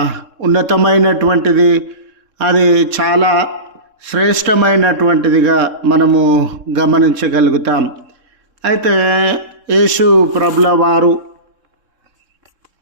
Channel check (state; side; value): late; left; 3.7 ms